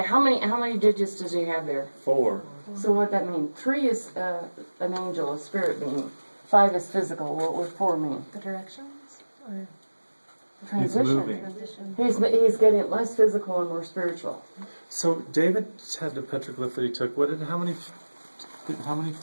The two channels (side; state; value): both; inverted; correlation -1.00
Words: how many digits does he have there? 4. So what that mean? 3 is an angel, a spirit being. 5 is physical. What would 4 mean? The directions? Or Transition. moving. transition? He's getting less physical and more spiritual. So David had the petroglyph that he took. How many?